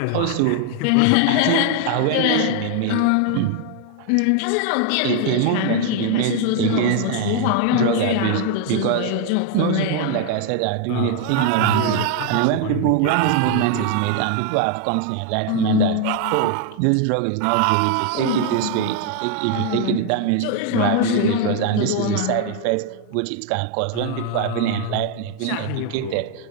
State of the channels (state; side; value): different; both; correlation 0.00